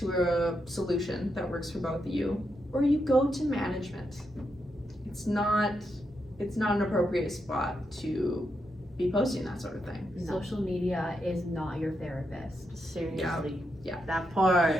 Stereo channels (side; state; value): both; normal; correlation 0.83